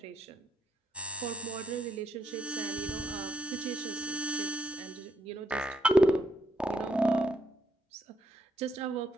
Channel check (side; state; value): both; normal; correlation 0.75